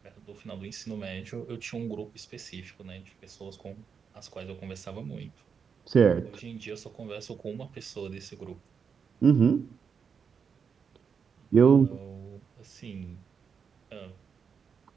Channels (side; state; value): left; quieter; 6.4 dB